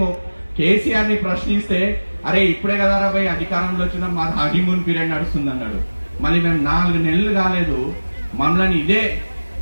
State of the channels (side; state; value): both; inverted; correlation -1.00